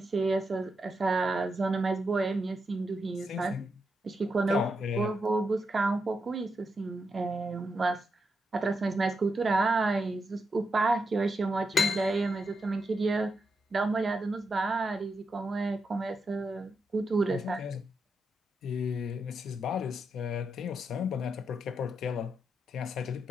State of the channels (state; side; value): normal; both; correlation 0.84